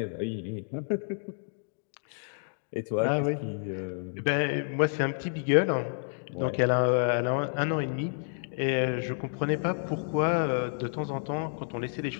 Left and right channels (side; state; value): right; silent; digital silence